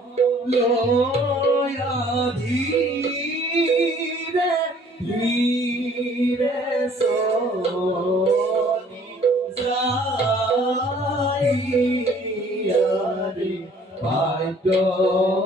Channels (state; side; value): normal; both; correlation 0.56